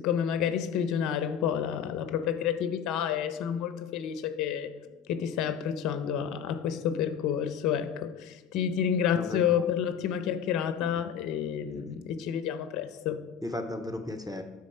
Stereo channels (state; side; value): quieter; right; 8.0 dB